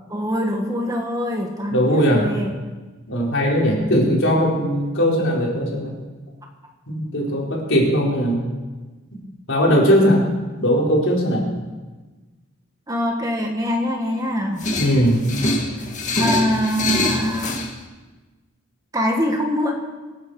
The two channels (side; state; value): both; normal; correlation 0.47